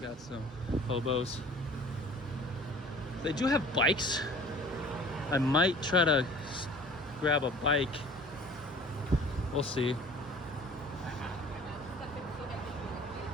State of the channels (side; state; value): both; normal; correlation 0.47